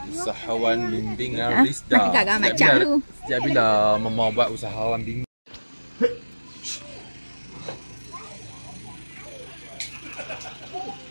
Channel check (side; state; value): both; inverted; correlation -1.00